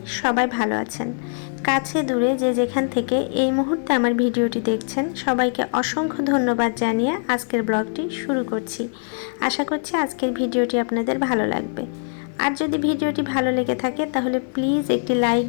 সবাই ভালো আছেন। কাছে দূরে যে যেখান থেকে এই মুহূর্তে আমার ভিডিওটি দেখছেন সবাইকে অসংখ্য ধন্যবাদ জানিয়ে আজকের ব্লগটি শুরু করছি। আশা করছি আজকের ভিডিওটি আপনাদের ভালো লাগবে। আর যদি ভিডিওটি ভালো লেগে থাকে তাহলে প্লিজ একটি লাইক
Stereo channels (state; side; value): silent; right; digital silence